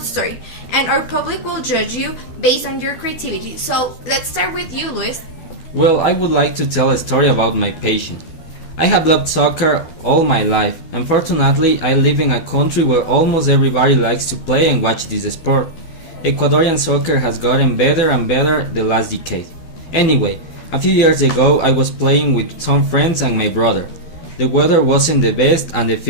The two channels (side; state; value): right; late; 12 ms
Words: story, and our public will judge you based on your creativity. So let's start with you, Luis. Well, I would like to tell a story about my passion. I have loved soccer all my life. Unfortunately, I live in a country where almost everybody likes to play and watch this sport. Ecuadorian soccer has gotten better and better the last decade. Anyway, a few years ago I was playing with some friends and my brother. The weather wasn't the best and the